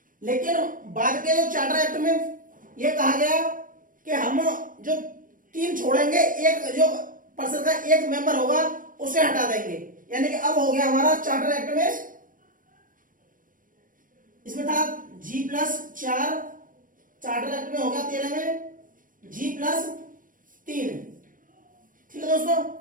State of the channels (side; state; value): left; late; 0.39 ms